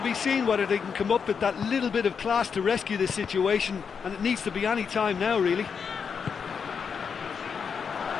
seen whether they can come up with that little bit of class to rescue this situation, and it needs to be any time now, really.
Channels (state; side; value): quieter; right; 6.4 dB